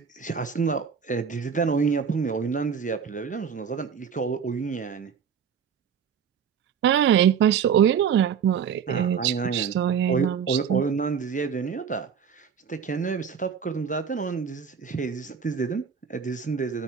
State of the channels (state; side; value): quieter; left; 7.2 dB